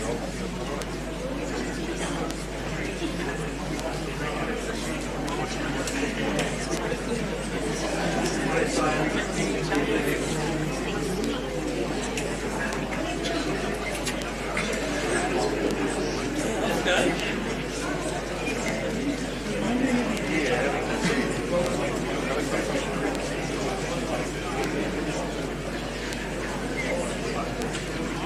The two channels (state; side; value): identical; both; correlation 1.00